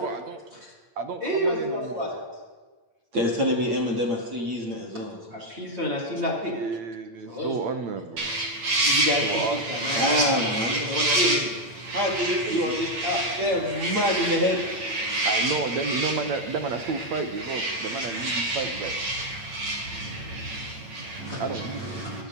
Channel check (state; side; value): late; left; 8.8 ms